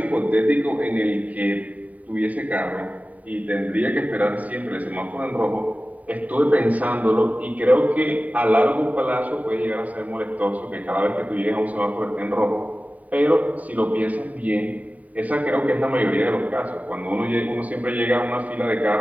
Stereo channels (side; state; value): left; late; 0.071 ms